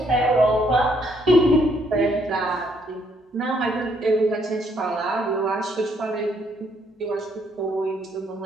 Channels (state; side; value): normal; both; correlation 0.69